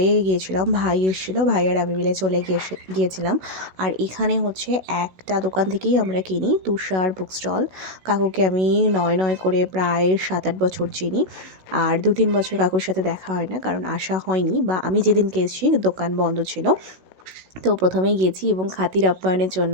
গিয়েছিলাম, ভাই এসেছিলো, ভাই আর আমি মিলে চলে গিয়েছিলাম। আর এখানে হচ্ছে একটা দোকান থেকেই আমরা কিনি, তুষার বুক স্টল। কাকুকে আমি নয় করে প্রায় 7-8 বছর চিনি। আর 2-3 বছর কাকুর সাথে দেখা হয় না, কারণ আসা হয়নি, বা আমি যেদিনকে এসেছি দোকান বন্ধ ছিল। তো প্রথমেই গেছি এবং খাতির আপ্যায়নের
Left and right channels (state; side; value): late; left; 16 ms